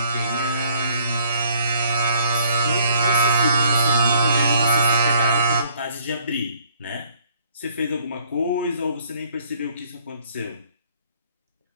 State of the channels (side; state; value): both; inverted; correlation -0.62